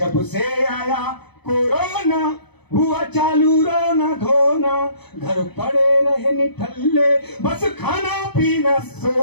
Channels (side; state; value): right; late; 0.98 ms